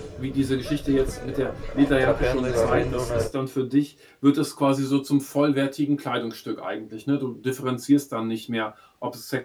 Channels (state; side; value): identical; both; correlation 1.00